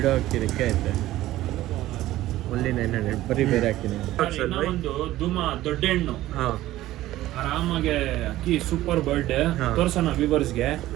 ಅಕ್ಕಿ ರೆಕ್ಕೆ ಐತೆ. ಓನ್ಲಿ 900. ಬರೀ ಬೇರೆ ಅಕ್ಕಿನೇ. ಒಂದು ಧೂಮ ದೊಡ್ಡ ಹೆಣ್ಣು ಹಾಂ ಆರಾಮಾಗೆ ಅಕ್ಕಿ ಸೂಪರ್ ಬರ್ಡ್ ಹಾ. ತೋರ್ಸೋಣ ವ್ಯೂವರ್ಸ್ಗೆ.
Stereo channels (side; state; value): left; quieter; 15.4 dB